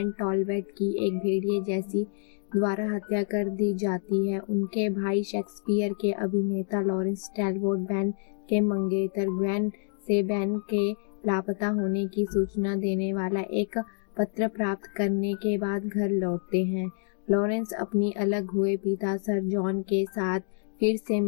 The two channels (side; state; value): right; silent; digital silence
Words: टॉलबट की एक भेड़िए जैसी द्वारा हत्या कर दी जाती है। उनके भाई शेक्सपियर के अभिनेता लॉरेंस टैलबॉट बेन के मंगेतर ग्वेन से बेन के लापता होने की सूचना देने वाला एक पत्र प्राप्त करने के बाद घर लौटते हैं। लॉरेंस अपनी अलग हुए पिता सर जॉन के साथ फिर से